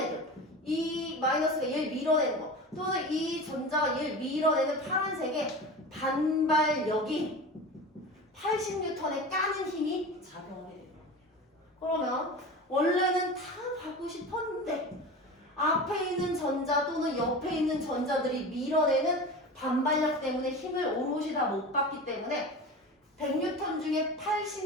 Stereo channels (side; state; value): both; normal; correlation 0.31